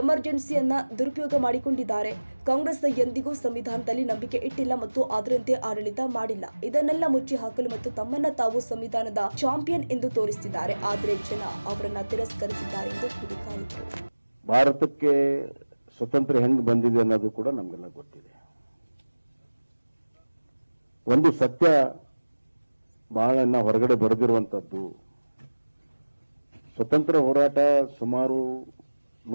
ದುರುಪಯೋಗ ಮಾಡಿಕೊಂಡಿದ್ದಾರೆ. ಕಾಂಗ್ರೆಸ್ ಎಂದಿಗೂ ಸಂವಿಧಾನದಲ್ಲಿ ನಂಬಿಕೆ ಇಟ್ಟಿಲ್ಲ ಮತ್ತು ಅದರಂತೆ ಆಡಳಿತ ಮಾಡಿಲ್ಲ. ಇದನ್ನೆಲ್ಲ ಮುಚ್ಚಿ ಹಾಕಲು ಮತ್ತು ತಮ್ಮನ್ನ ತಾವು ಸಂವಿಧಾನದ ಚಾಂಪಿಯನ್ ಎಂದು ತೋರಿಸಿದ್ದಾರೆ. ಆದರೆ ಜನ ಅವರನ್ನ ತಿರಸ್ಕರಿಸಿದ್ದಾರೆ ಎಂದು ಕಿಡಿಕಾರಿದರು. ಭಾರತಕ್ಕೆ ಸ್ವತಂತ್ರ ಹೆಂಗ್ ಬಂದಿದೆ ಅನ್ನೋದು ಕೂಡ ನಮಗೆಲ್ಲ ಗೊತ್ತಿದೆ. ಒಂದು ಸತ್ಯ ಬಹಳ ಹೊರಗಡೆ ಬರೆದಿರುವಂತದ್ದು, ಸ್ವತಂತ್ರ ಹೋರಾಟ ಸುಮಾರು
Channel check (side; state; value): both; inverted; correlation -1.00